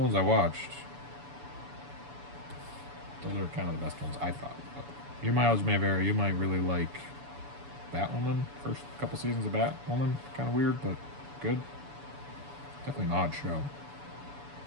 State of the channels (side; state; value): left; late; 7.0 ms